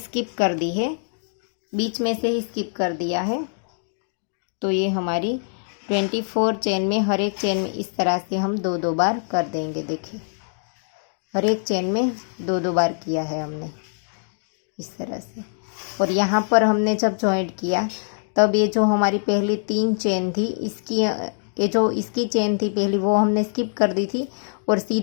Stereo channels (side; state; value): right; silent; digital silence